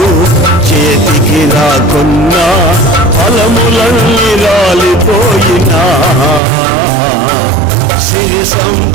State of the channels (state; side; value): drops out; left; at 6.4 s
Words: చేతికి రాకున్నా ఫలములన్నీ రాలిపోయినా సిరి